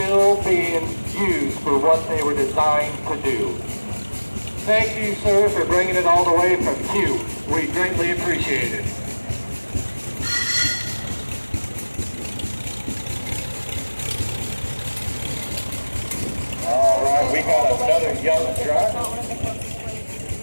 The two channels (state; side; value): inverted; both; correlation -1.00